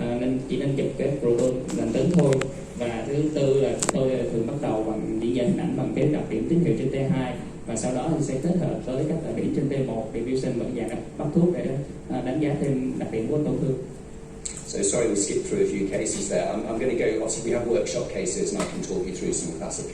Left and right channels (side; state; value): both; identical; correlation 1.00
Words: chỉ nên chụp cái proton lành tính thôi. Và thứ tư là tôi thường bắt đầu bằng diễn giải hình ảnh bằng cái đặc điểm tín hiệu trên T2, và sau đó thì sẽ kết hợp với các đặc điểm trên T1, diffusion và dạng bắt thuốc để đánh giá thêm đặc điểm của tổn thương. So sorry we skipped through a few cases there. I'm going to go, obviously we have workshop cases and I can talk you through some classic